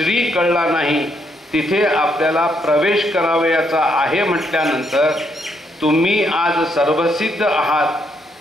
कळला नाही तिथे आपल्याला प्रवेश करावयाचा आहे म्हटल्यानंतर तुम्ही आज सर्वसिद्ध आहात,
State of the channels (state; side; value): normal; both; correlation 0.75